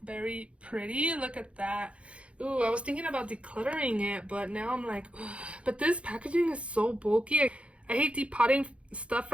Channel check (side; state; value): left; late; 0.061 ms